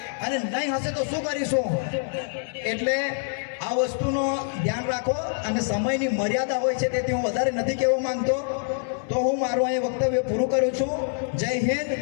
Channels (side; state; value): right; silent; 61 dB below the other